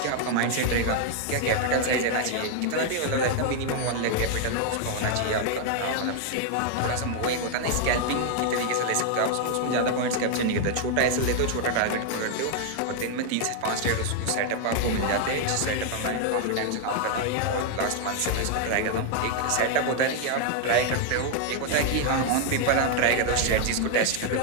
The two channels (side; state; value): both; different; correlation 0.00